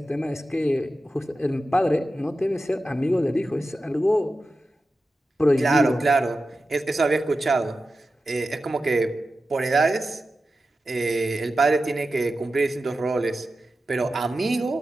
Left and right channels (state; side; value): normal; both; correlation 0.92